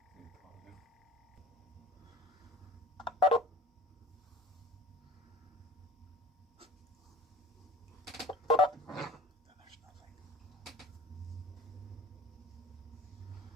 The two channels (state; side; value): normal; both; correlation 0.43